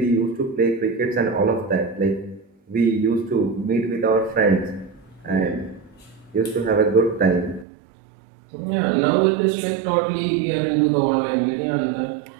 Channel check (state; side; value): drops out; left; at 7.7 s